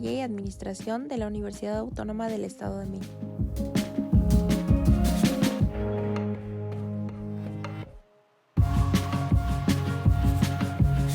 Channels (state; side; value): identical; both; correlation 1.00